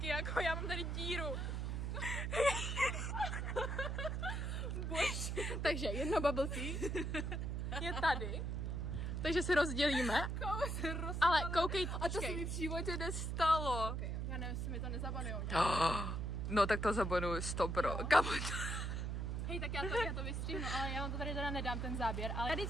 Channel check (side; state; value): right; noise; hum, 1 dB below the sound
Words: jako já mám tady díru. Bož. Takže jedno bubble tea je tady, takže se rozdělíme, ale koukej, a to se mi v životě nestalo. Okay, já nevím, jestli mi to nezabanujou. No tak to zabanuju 100%, kamo to. Hej, tak já to vystřihnu, ale já vám to tady teda nedám ten záběr, ale tady